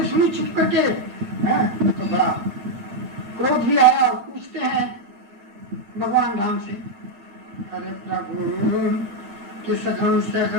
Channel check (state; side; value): late; left; 8.6 ms